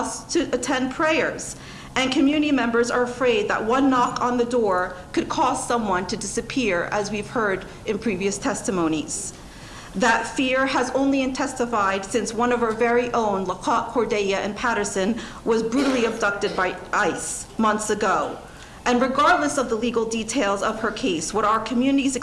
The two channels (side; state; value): both; identical; correlation 1.00